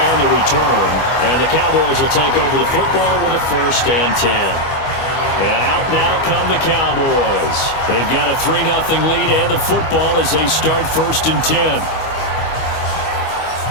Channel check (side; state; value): right; late; 25 ms